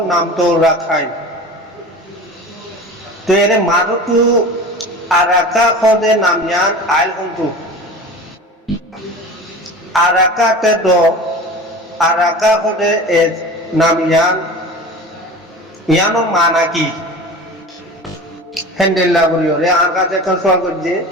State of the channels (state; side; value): normal; both; correlation 0.35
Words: নাম তো রাখাই তো এর মারুতু আরাকা খদে নামিয়ান আইল হন্তু আরাকা তে দো আরাকা খদে এ নামিয়ান ইয়ানো মানা কি হ্যান্ডেল করিওরে আর কাছে কোন সওয়াল করছে